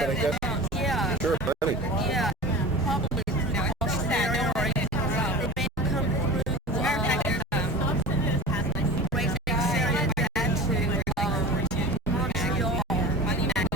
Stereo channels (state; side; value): normal; both; correlation 0.35